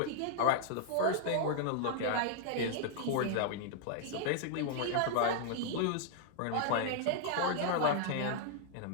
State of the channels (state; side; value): different; both; correlation 0.00